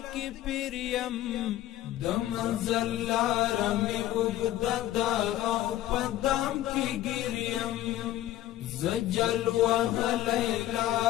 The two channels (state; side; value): quieter; right; 13.9 dB